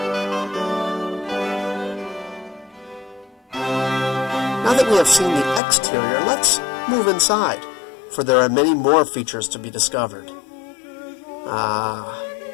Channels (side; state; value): right; drops out; at 5.6 s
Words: Now that we have seen the exterior, let's move inside, for there are many more features to be discovered.